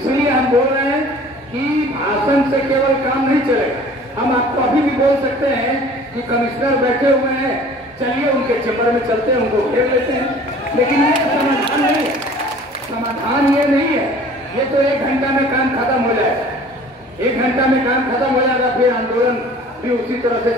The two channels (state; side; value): normal; both; correlation 0.48